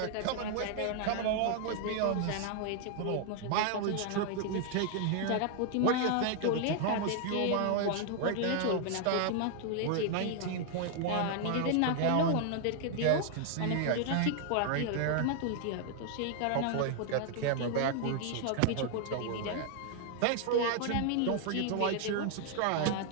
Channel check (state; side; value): different; both; correlation 0.00